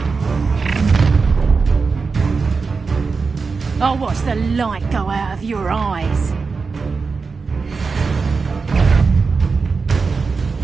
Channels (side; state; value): left; quieter; 4.7 dB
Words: I'll watch the light go out of your eyes.